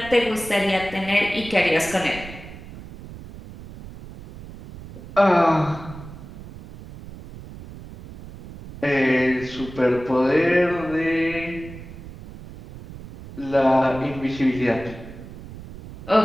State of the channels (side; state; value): right; noise; rumble, 15 dB below the sound